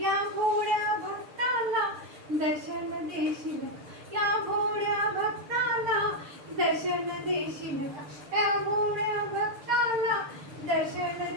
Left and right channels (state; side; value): late; left; 6.7 ms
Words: या भोळ्या भक्ताला दर्शन देशील या भोळ्या भक्ताला दर्शन देशील का या भोळ्या भक्ताला दर्शन